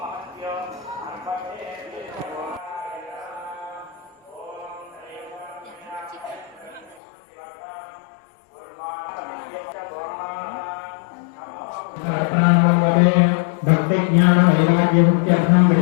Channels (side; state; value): right; drops out; at 7.0 s